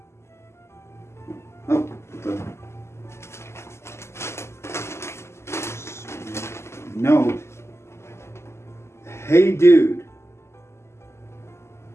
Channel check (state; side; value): late; right; 0.13 ms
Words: Oh, what the. Note. Hey, dude.